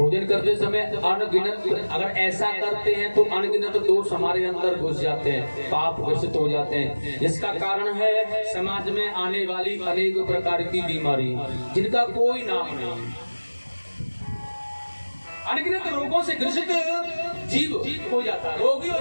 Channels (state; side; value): inverted; both; correlation -1.00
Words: करते समय अनगिनत, अगर ऐसा करते हैं तो अनगिनत दोष हमारे अंदर घुस जाते हैं, पाप घोषित हो जाते हैं, जिसका कारण है समाज में आने वाली अनेक प्रकार की बीमारी जिनका कोई नाम नहीं। अनगिनत रोगों से ग्रसित जीव हो जाता है, रोगी हो